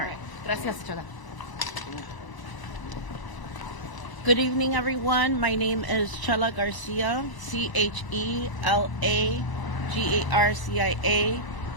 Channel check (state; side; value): late; right; 1.0 ms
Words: right. Gracias, Chela. Good evening, everyone. My name is Chela Garcia, CHELAGARCIA.